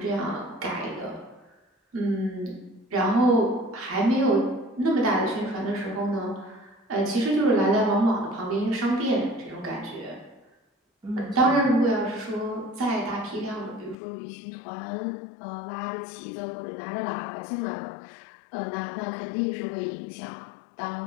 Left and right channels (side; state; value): right; drops out; at 14.0 s